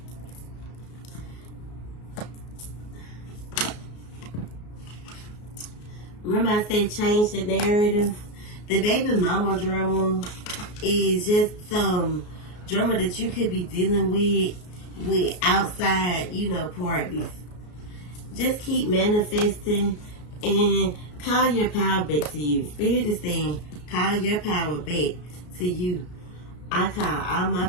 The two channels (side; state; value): right; late; 33 ms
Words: Remember I said change the narrative? The baby mama drama is just some drama that you could be dealing with outside, parties. Just keep manifesting and call your power back to you. Spirit is saying, call your power back to you. I call all my